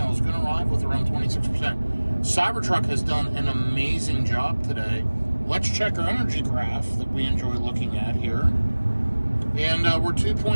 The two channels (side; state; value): both; inverted; correlation -1.00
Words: Going to arrive with around 26%. Cybertruck has done an amazing job today. Let's check our energy graph that we enjoy looking at here. And we're